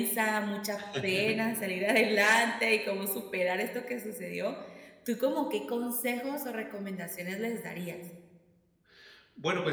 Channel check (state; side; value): identical; both; correlation 1.00